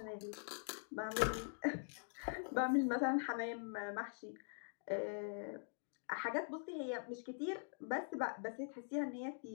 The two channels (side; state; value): right; silent; digital silence